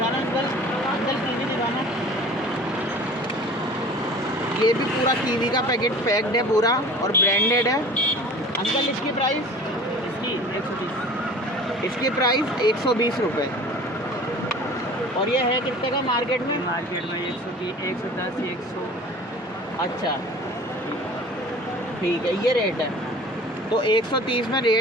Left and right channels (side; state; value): both; normal; correlation 0.43